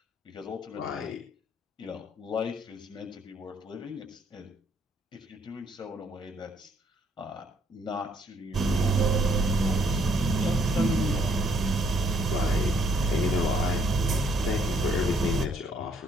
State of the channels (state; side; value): normal; both; correlation 0.66